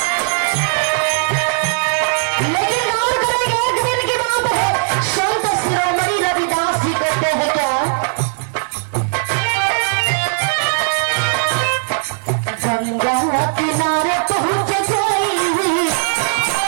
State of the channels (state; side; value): silent; left; 65 dB below the other